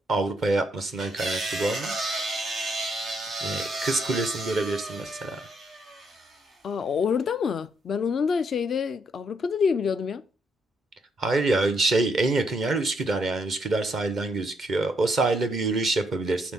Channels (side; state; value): both; normal; correlation 0.74